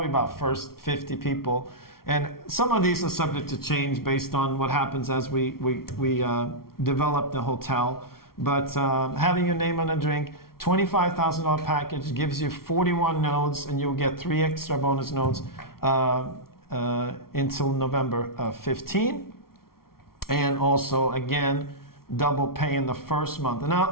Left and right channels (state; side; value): late; right; 0.93 ms